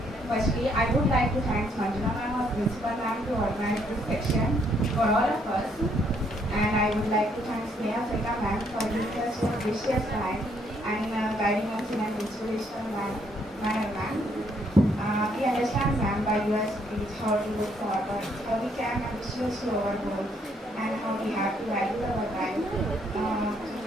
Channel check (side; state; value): both; normal; correlation 0.70